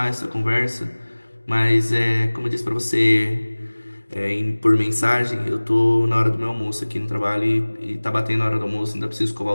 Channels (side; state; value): both; inverted; correlation -1.00